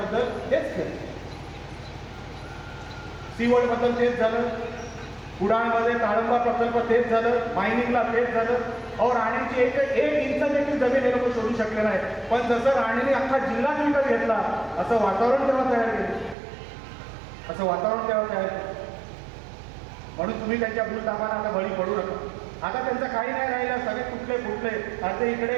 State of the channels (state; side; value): drops out; left; at 16.4 s